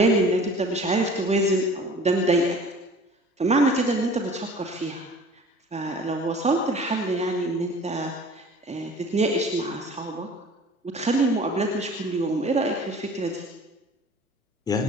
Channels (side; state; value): both; normal; correlation 0.46